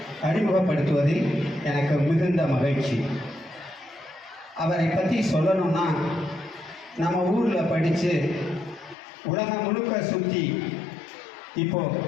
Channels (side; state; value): right; drops out; at 9.0 s